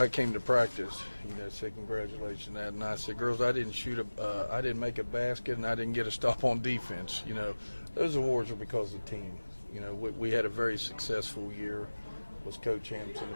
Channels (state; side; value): inverted; both; correlation -1.00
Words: came to practice, said congratulations on that, and I said, girls, I didn't make a basket, and I didn't get a stop on defense. Those awards are because of the team. We had a very successful year, was co-champs in the